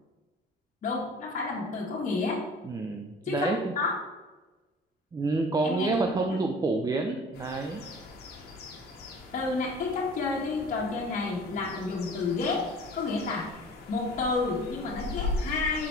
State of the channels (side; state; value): both; normal; correlation 0.45